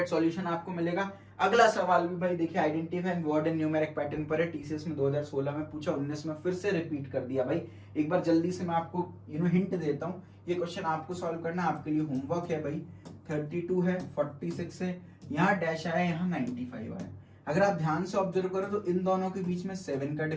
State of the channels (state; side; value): identical; both; correlation 1.00